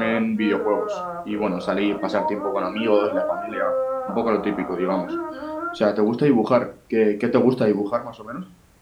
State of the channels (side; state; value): both; identical; correlation 1.00